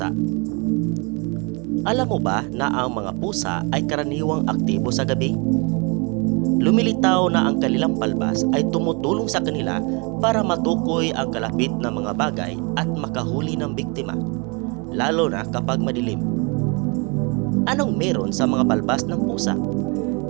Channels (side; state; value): left; quieter; 31.5 dB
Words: Alam mo ba na ang mga pusa ay karaniwang aktibo sa gabi? Lumilitaw na ang kanilang balbas ay tumutulong sa kanila para matukoy ang kalapit na mga bagay at makahuli ng biktima, lalo na kapag madilim. Anong meron sa mga balbas ng pusa?